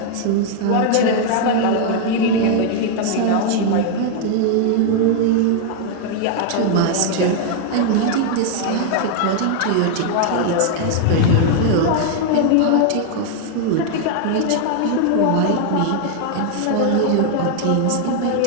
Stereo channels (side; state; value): both; different; correlation 0.00